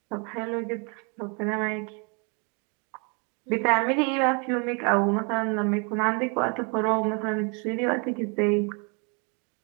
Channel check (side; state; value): left; quieter; 34.7 dB